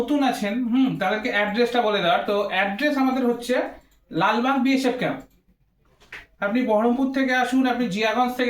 আছেন তাদেরকে অ্যাড্রেসটা বলে দেওয়ার। তো অ্যাড্রেস আমাদের হচ্ছে লালবাগ বিএসএফ ক্যাম্প। আপনি বহরমপুর থেকে আসুন, আপনি জিয়াগঞ্জ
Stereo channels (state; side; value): identical; both; correlation 1.00